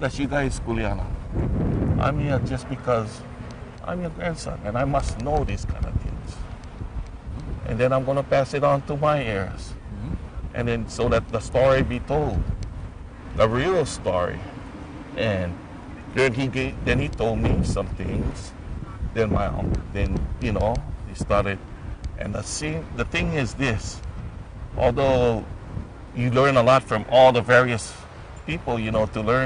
you guys, Kuliana. I'm here just because I'm your grandson and I must know these kind of things. And then I'm going to pass it on to my heirs. Mm-hmm. And then so that the story be told, the real story. And then he told me some things. Then he started. And the thing is this, although you learn a lot from all the various people, to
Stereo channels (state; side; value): identical; both; correlation 1.00